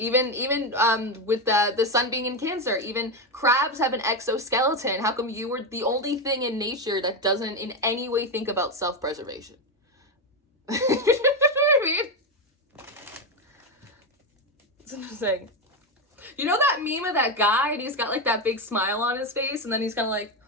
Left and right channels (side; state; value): both; normal; correlation 0.11